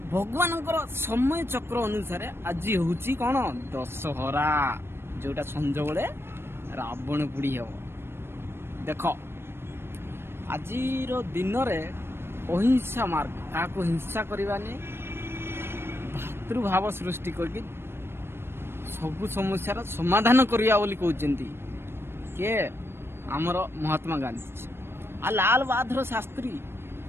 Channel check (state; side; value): late; left; 0.12 ms